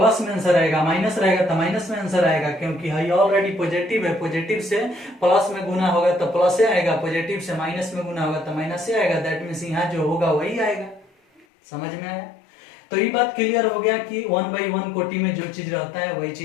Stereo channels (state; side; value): drops out; right; at 11.5 s